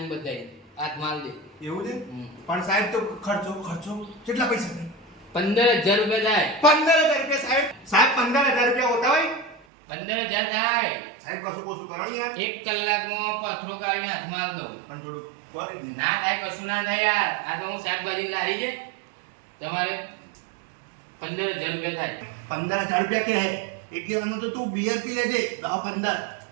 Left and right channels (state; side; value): drops out; left; at 9.6 s